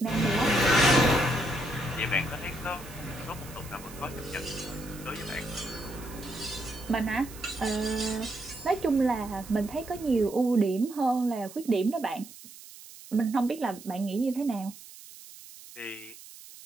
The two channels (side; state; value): right; noise; hiss, 17 dB below the sound